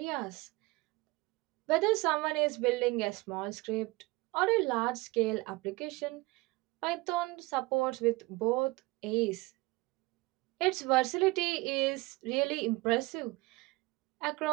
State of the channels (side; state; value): left; quieter; 22.6 dB